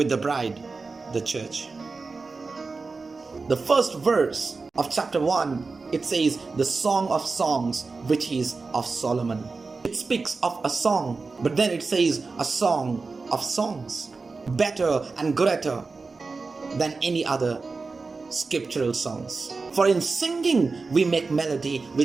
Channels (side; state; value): left; quieter; 4.1 dB